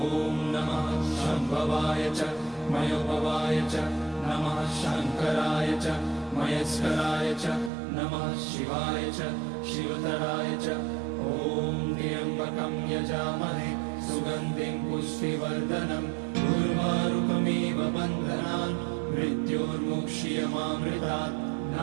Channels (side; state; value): left; drops out; at 7.7 s